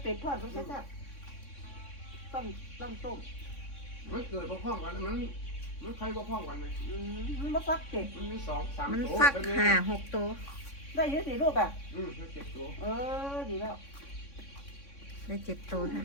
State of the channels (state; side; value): late; right; 3.6 ms